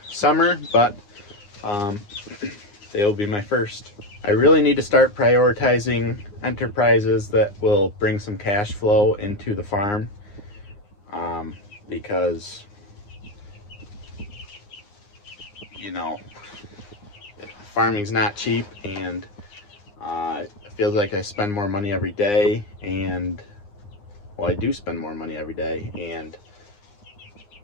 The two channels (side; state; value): right; late; 9.7 ms